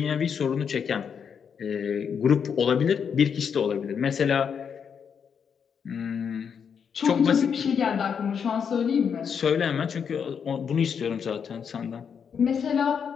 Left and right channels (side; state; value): right; quieter; 7.0 dB